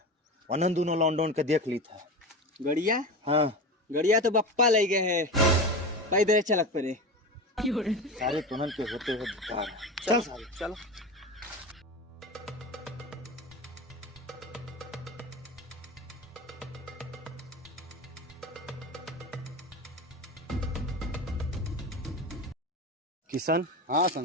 अनंत दोनों लॉन्डन के देख ली था। गड़िया हाँ गड़िया तो बप्पा ले गए है, पैदल चलक पड़े। सारे तुनन के होते हुए बेकार है। चल सारे चलो। किशन हाँ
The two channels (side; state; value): both; normal; correlation 0.26